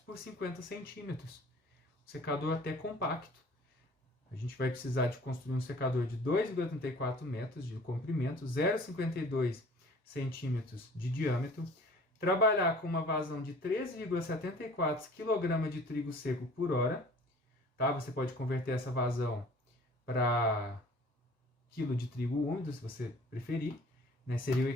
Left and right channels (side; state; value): both; normal; correlation 0.49